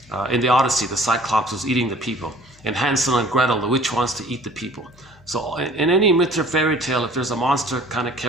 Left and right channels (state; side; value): noise; left; hum, 26 dB below the sound